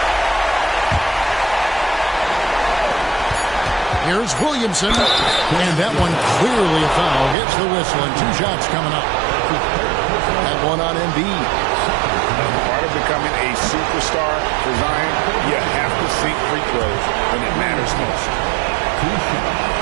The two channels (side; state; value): left; drops out; at 7.4 s